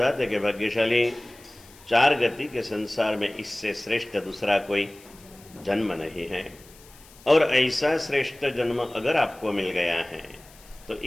कि भाग्यशाली चार गति के संसार में इससे श्रेष्ठ दूसरा कोई जन्म नहीं है। और ऐसा श्रेष्ठ जन्म अगर आपको मिल गया है तो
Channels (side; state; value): left; noise; hiss, 24 dB below the sound